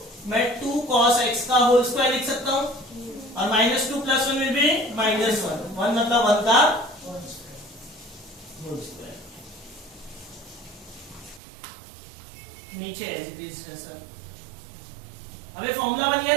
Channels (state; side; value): drops out; left; at 11.4 s